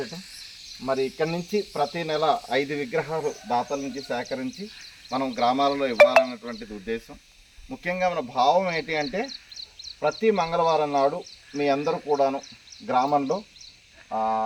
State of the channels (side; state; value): both; identical; correlation 1.00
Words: మరి ఇక్కడి నుంచి ప్రతి నెల 5 విగ్రహాలు దాతల నుంచి సేకరించి మనం గ్రామాలలో ఇవ్వాలన్నటువంటిది ఉద్దేశం. ముఖ్యంగా మన భావం ఏంటి అంటే ప్రతి మంగళవారం నాడు మీ అందరూ కూడాను గ్రామంలో